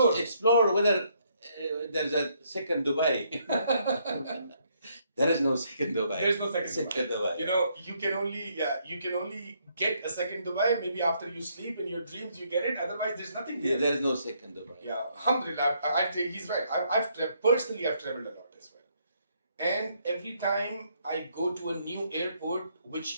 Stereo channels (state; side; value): inverted; both; correlation -0.71